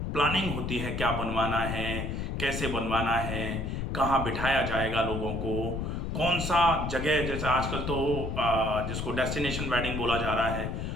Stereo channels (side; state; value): left; noise; rumble, 3 dB below the sound